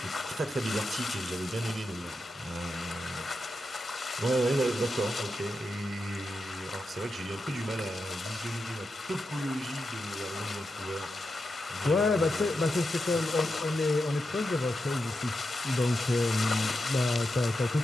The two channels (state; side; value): normal; both; correlation 0.88